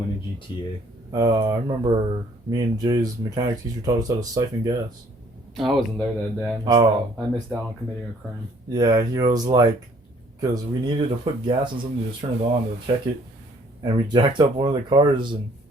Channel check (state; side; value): normal; both; correlation 0.60